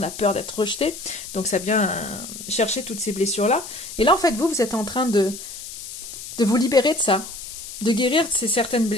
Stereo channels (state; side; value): noise; left; hiss, 11 dB below the sound